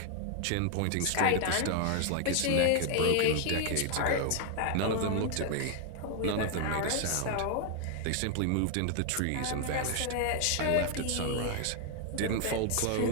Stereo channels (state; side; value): different; both; correlation 0.00